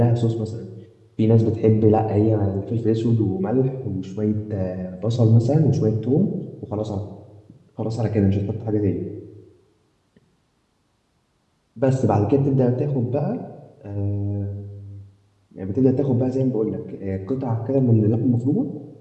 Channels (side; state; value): both; identical; correlation 1.00